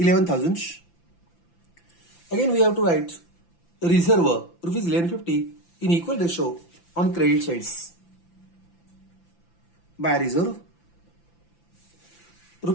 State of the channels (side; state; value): right; late; 5.9 ms